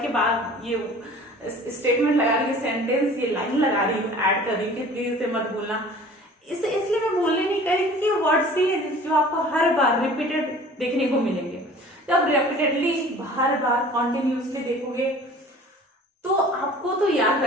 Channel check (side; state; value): both; normal; correlation 0.46